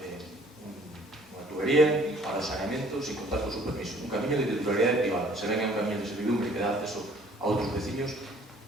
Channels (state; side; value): normal; both; correlation 0.57